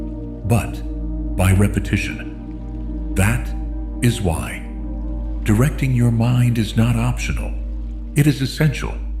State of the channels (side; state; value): both; identical; correlation 1.00